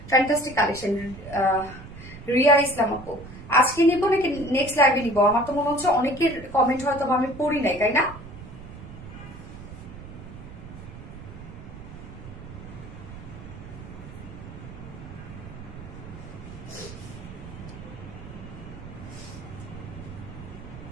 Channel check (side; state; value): right; noise; rumble, 13 dB below the sound